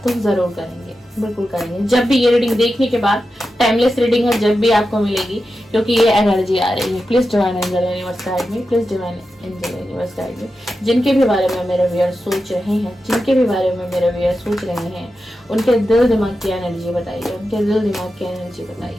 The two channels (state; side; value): normal; both; correlation 0.91